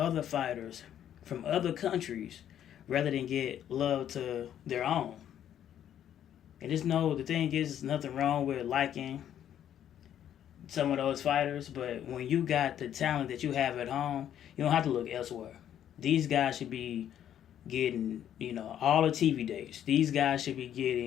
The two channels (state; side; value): quieter; right; 10.4 dB